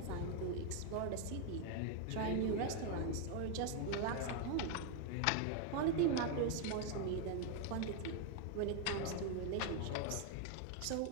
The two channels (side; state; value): both; different; correlation 0.01